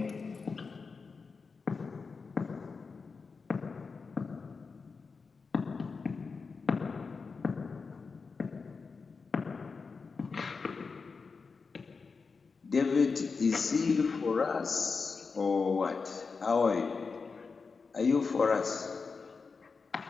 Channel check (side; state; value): right; quieter; 4.8 dB